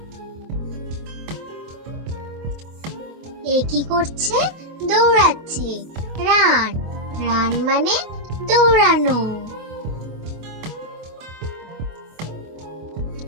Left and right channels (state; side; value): late; left; 25 ms